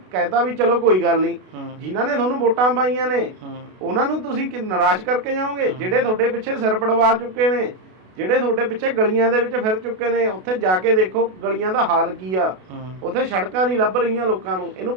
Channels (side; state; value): left; late; 32 ms